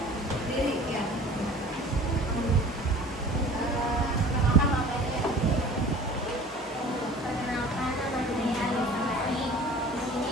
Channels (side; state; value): both; normal; correlation 0.45